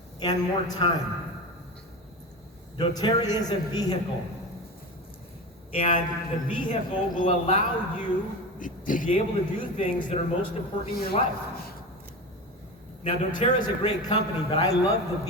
and more time. doTERRA is a vehicle, and the vehicle will allow you to be able to do things that are most important in your life. Now, doTERRA is a great company, but I love the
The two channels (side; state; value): both; normal; correlation 0.25